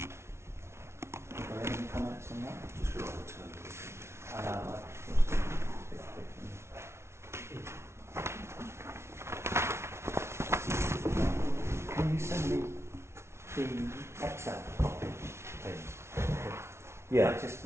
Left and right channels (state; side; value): late; left; 0.13 ms